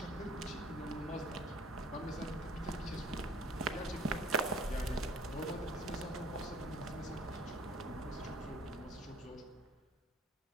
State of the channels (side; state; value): both; normal; correlation 0.51